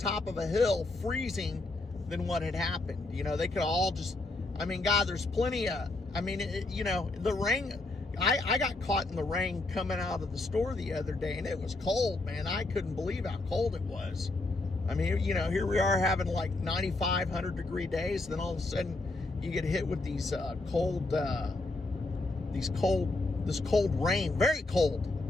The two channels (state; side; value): quieter; right; 3.0 dB